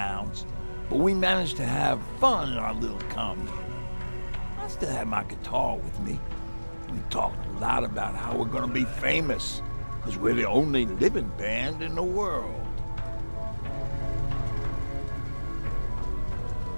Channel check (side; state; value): both; inverted; correlation -1.00